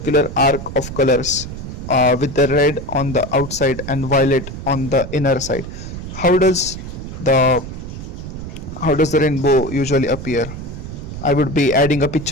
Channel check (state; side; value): noise; right; rumble, 9 dB below the sound